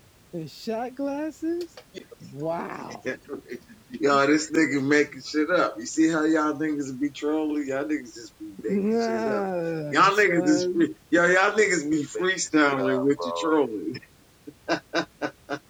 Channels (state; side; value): identical; both; correlation 1.00